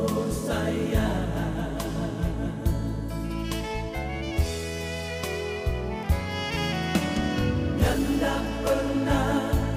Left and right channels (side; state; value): both; identical; correlation 1.00